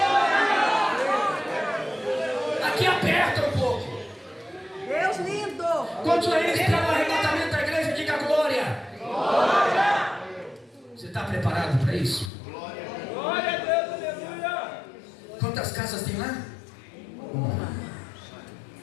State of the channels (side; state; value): right; drops out; at 12.3 s